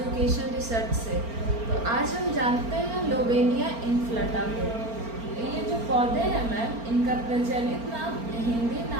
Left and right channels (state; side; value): late; left; 4.4 ms